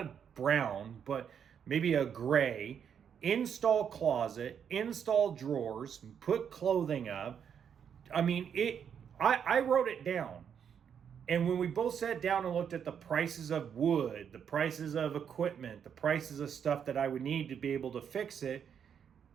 brown, but maybe a gray, install closet, install drawers, put clothing up. I mean, I wrote it down. And when we both sat down and looked at the prices of wood, the prices of equipment, the prices of stuff that I would need to be able to fix it,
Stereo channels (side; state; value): left; quieter; 7.9 dB